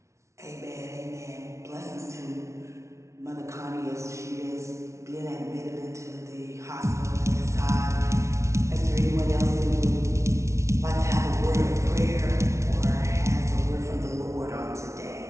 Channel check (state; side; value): late; left; 0.14 ms